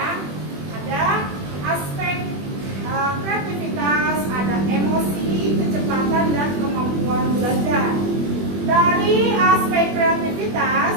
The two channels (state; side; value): late; left; 21 ms